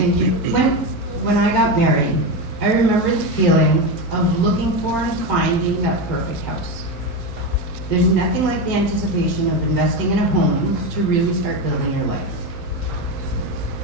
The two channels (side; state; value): both; normal; correlation 0.15